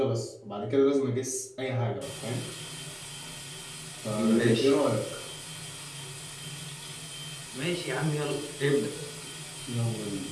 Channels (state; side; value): identical; both; correlation 1.00